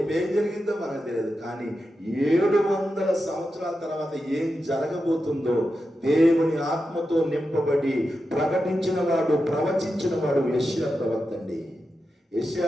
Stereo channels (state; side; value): normal; both; correlation 0.89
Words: జరిగిందో మనకు తెలియదు. కానీ 700 సంవత్సరాల తర్వాత ఏం జరగబోతుందో దేవుని ఆత్మతో నింపబడి ప్రకటించిన వాడు, ప్రవచించిన వాడు యెషయా ప్రవక్త అండి.